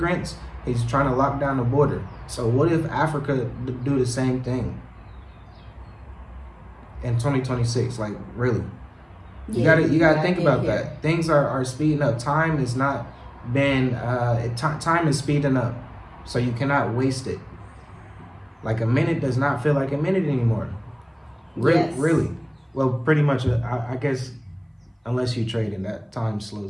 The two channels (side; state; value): both; identical; correlation 1.00